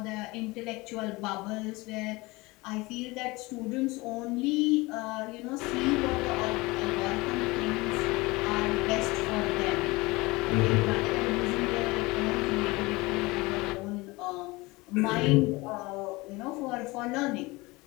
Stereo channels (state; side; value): quieter; right; 22.8 dB